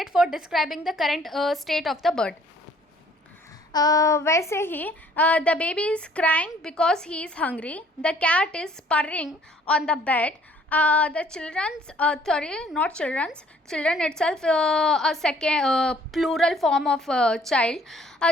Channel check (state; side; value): normal; both; correlation 0.59